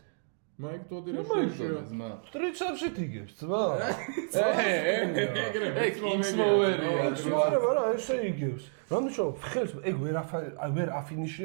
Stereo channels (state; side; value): silent; left; digital silence